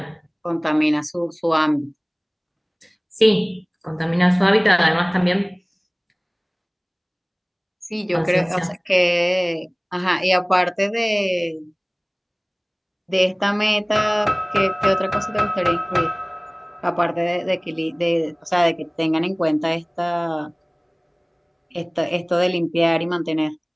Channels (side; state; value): both; identical; correlation 1.00